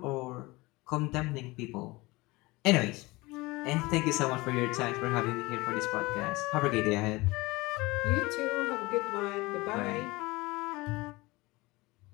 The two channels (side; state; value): right; quieter; 22.2 dB